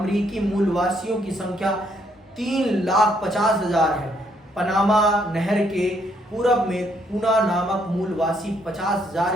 मूलवासियों की संख्या 3,50,000 है। पनामा नहर के पूरब में पूना नामक मूलवासी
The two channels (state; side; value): normal; both; correlation 0.71